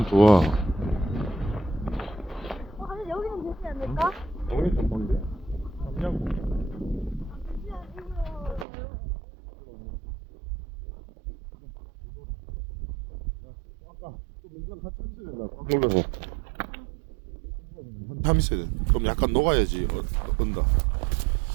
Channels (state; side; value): drops out; left; at 8.7 s